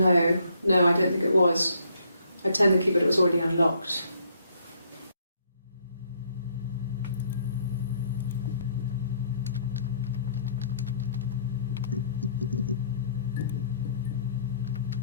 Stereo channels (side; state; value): both; inverted; correlation -0.67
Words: No, I don't think it was. I turned the key, but it was already unlocked.